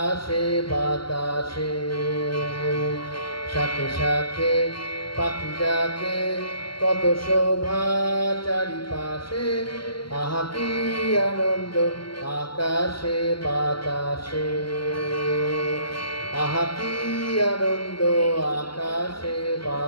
বাতাসে, শাখে শাখে পাখি ডাকে কত শোভা চারিপাশে। আহা কি আনন্দ আকাশে বাতাসে, আহা কি আনন্দ আকাশে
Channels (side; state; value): right; late; 0.73 ms